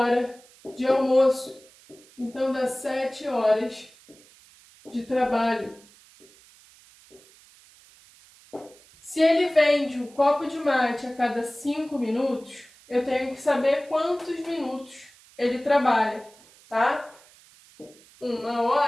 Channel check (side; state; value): right; noise; hiss, 26 dB below the sound